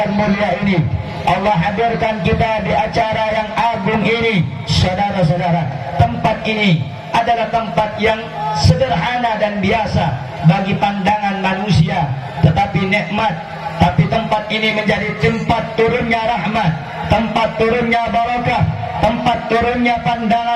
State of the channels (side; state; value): both; identical; correlation 1.00